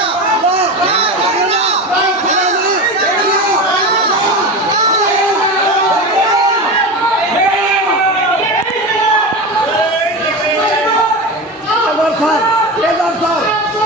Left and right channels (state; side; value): normal; both; correlation 0.24